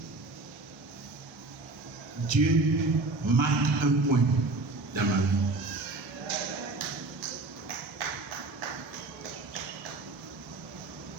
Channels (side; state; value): left; quieter; 3.3 dB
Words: Dieu marque un point dans ma vie.